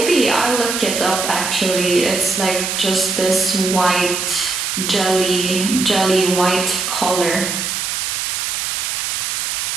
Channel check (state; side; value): noise; right; hiss, 2 dB below the sound